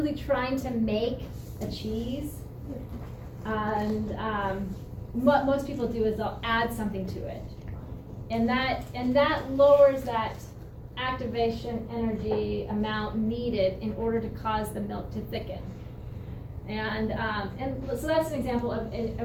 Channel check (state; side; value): identical; both; correlation 1.00